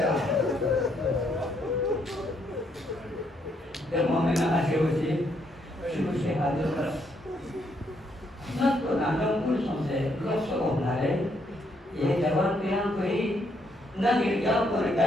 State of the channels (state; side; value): normal; both; correlation 0.73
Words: Demam yang asal uji, suci hadir beras. Nak tu nanam pun sampai gosok nare, ye jawan tiang koi, nak irjam pun